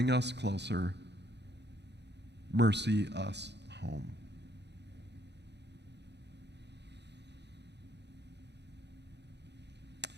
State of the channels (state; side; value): late; left; 0.50 ms